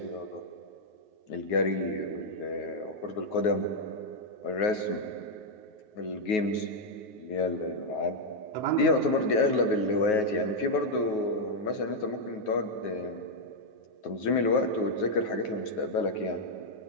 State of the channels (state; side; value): late; right; 9.4 ms